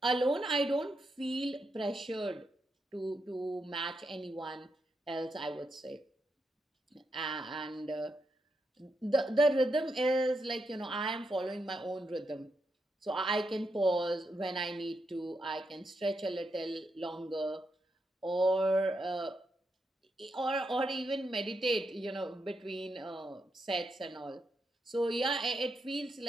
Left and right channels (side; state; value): both; normal; correlation 0.83